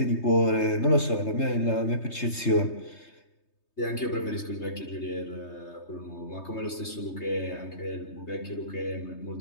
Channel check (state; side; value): late; right; 3.3 ms